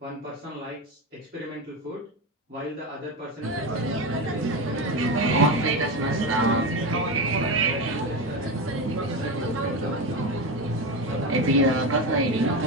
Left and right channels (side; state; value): both; normal; correlation 0.17